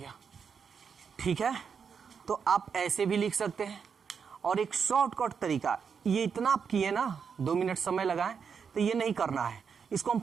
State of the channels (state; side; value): quieter; left; 6.4 dB